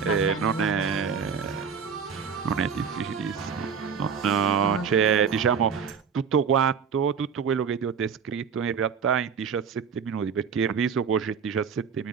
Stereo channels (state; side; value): quieter; left; 6.6 dB